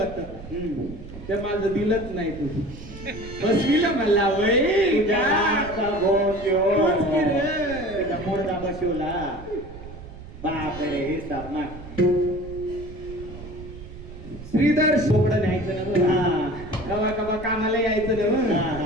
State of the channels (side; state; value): right; noise; rumble, 14 dB below the sound